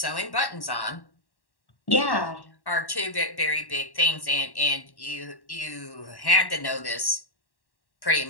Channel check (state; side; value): late; right; 1.1 ms